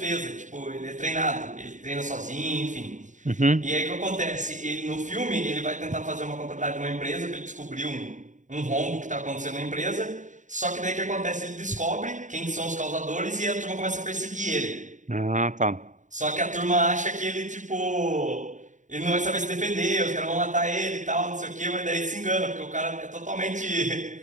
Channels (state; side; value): late; left; 0.36 ms